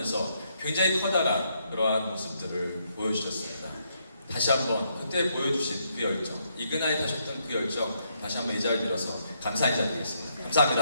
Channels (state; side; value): inverted; both; correlation -0.75